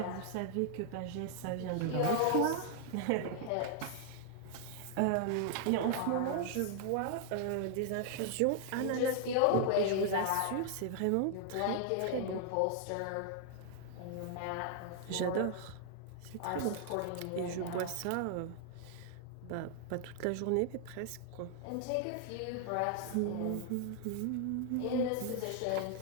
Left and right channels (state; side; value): different; both; correlation 0.00